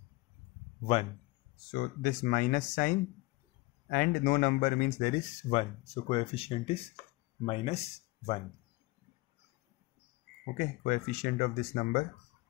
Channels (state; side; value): quieter; right; 21.9 dB